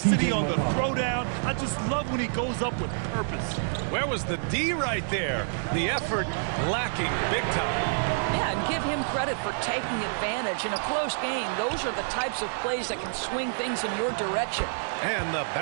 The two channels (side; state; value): left; silent; 60 dB below the other